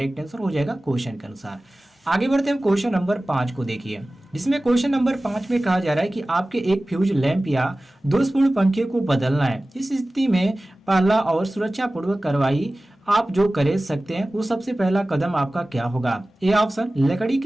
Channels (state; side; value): normal; both; correlation 0.97